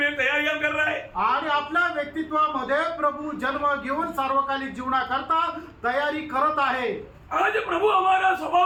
तैयारियां कर रहा है। आणि आपल्या व्यक्तित्वामध्ये प्रभू जन्म घेऊन सार्वकालिक जीवनाकरता तयारी करत आहे। आज प्रभु हमारा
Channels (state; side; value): identical; both; correlation 1.00